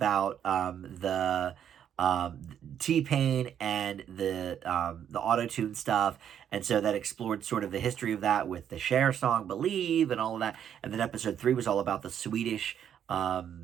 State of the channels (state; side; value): quieter; left; 9.2 dB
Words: the T-Pain and the auto-tune stuff. And so that explored sort of the history of that with the Cher song Believe and all of that. And then episode 3 was all about the Swedish